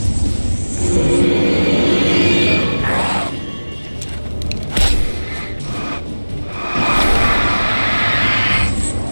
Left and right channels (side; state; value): both; inverted; correlation -1.00